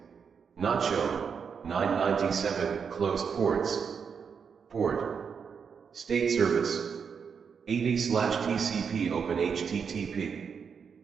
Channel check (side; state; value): left; quieter; 6.4 dB